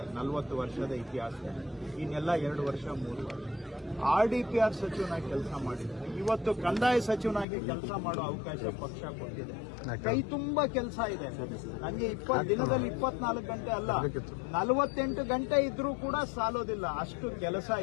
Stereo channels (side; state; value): right; drops out; at 7.5 s